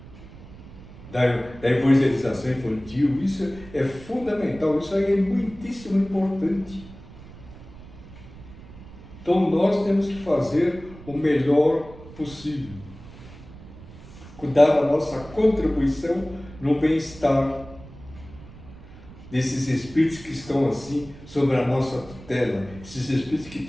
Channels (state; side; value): noise; right; rumble, 18 dB below the sound